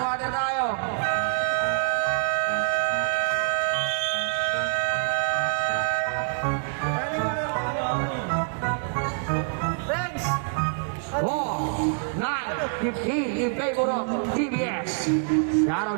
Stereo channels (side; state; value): left; silent; 61 dB below the other